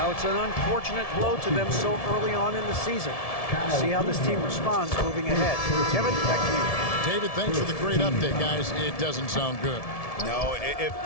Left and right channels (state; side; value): late; right; 1.7 ms